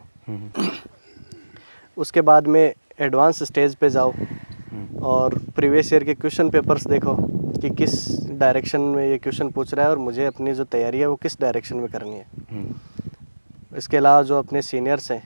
उसके बाद में एडवांस स्टेज पे जाओ और प्रीवियस ईयर के क्वेश्चन पेपर्स देखो कि किस डायरेक्शन में ये क्वेश्चन पूछ रहा है और मुझे अपनी जो तैयारी है वो किस डायरेक्शन में करनी है। इसके अलावा जो अपने सीनियर्स हैं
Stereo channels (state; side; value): inverted; both; correlation -1.00